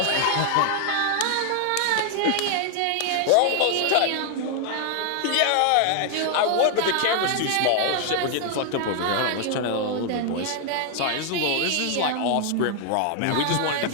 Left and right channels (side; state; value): both; different; correlation 0.00